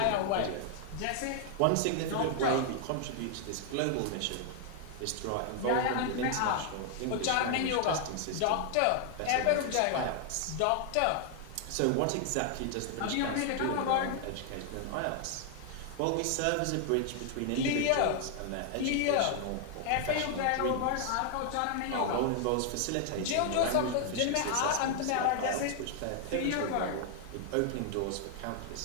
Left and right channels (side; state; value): both; different; correlation 0.00